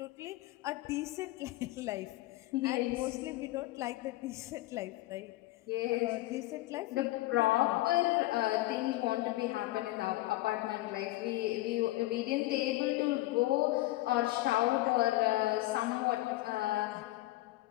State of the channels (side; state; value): right; quieter; 18.0 dB